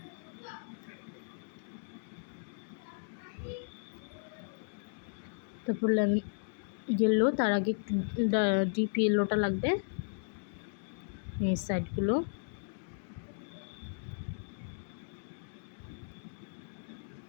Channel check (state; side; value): silent; right; digital silence